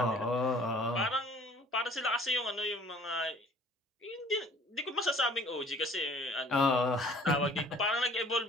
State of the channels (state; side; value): normal; both; correlation 0.53